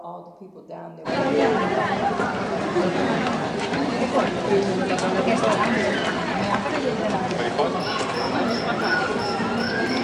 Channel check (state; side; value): identical; both; correlation 1.00